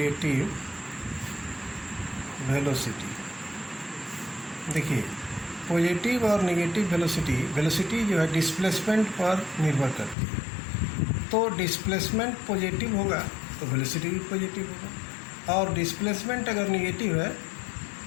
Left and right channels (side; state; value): right; drops out; at 10.2 s